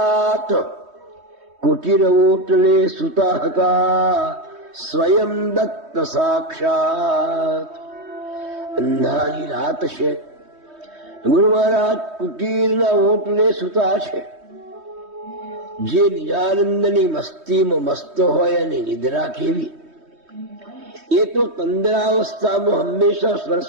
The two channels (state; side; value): late; left; 3.2 ms